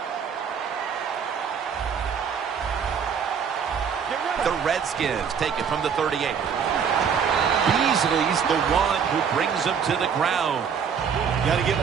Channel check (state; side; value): quieter; left; 7.0 dB